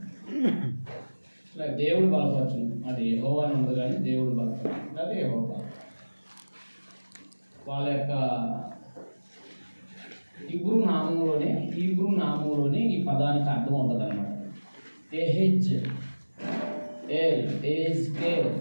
ఇట్లా దేవుడు బలపరచును. అది యెహోవా అని ఉంది కానీ దేవుడు బలపరచు అది యెహోవా. వాళ్ళ యొక్క హీబ్రూ నామంలోనే ఈ పదానికి అర్థం ఉంటుంది అన్నమాట.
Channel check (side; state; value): both; inverted; correlation -1.00